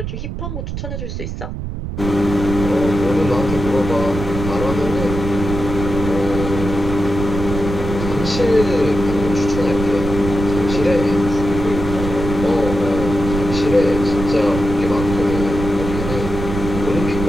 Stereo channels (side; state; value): right; noise; rumble, 6 dB below the sound